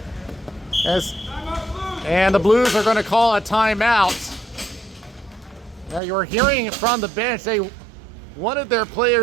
And the Blues are going to call a timeout. Now you're hearing from the bench, they wanted their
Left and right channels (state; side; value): drops out; left; at 6.0 s